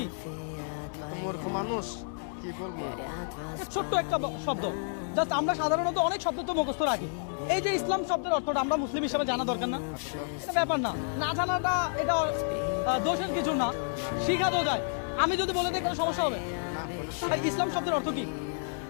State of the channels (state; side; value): silent; right; digital silence